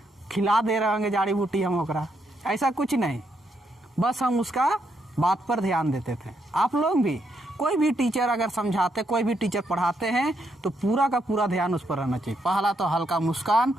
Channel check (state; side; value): normal; both; correlation 0.78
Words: खिला दे रहे होंगे जाड़ी बूटी हम ओकरा, ऐसा कुछ नहीं। बस हम उसका बात पर ध्यान देते थे। आप लोग भी कोई भी टीचर अगर समझाते, कोई भी टीचर पढ़ाते हैं तो पूरा का पूरा ध्यान उस पर रहना चाहिए। पहला तो हल्का मुस्कान,